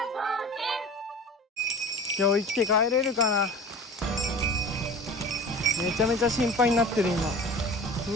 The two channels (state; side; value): normal; both; correlation 0.37